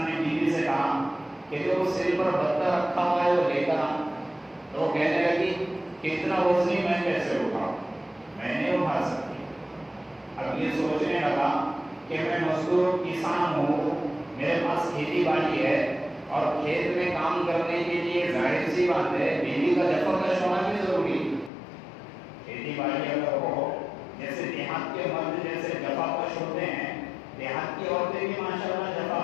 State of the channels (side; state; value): right; drops out; at 21.5 s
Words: نے بیوی سے کہا کہ جو سر پر بتا رکھا ہوا ہے وہ لے کر آ۔ تو وہ کہنے لگی کہ اتنا وزنی میں کیسے اٹھاؤں، میں نہیں اٹھا سکتی۔ اب یہ سوچنے لگا کہ میں مزدور کسان ہوں، میرے پاس کھیتی باڑی ہے، اور کھیت میں کام کرنے کے لیے ظاہر سی بات ہے بیوی کا جفاکش ہونا بھی ضروری ہے۔ کھیتی باڑی اگر ہو، جیسے دیہات کے مرد جیسے جفاکش ہوتے ہیں، دیہات کی عورتیں بھی ماشاءاللہ